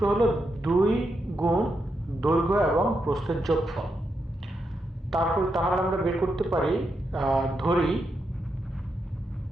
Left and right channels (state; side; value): normal; both; correlation 0.84